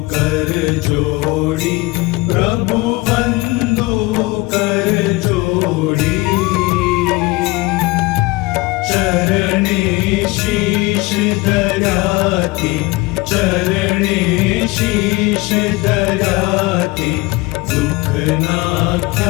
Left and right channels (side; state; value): right; quieter; 22.7 dB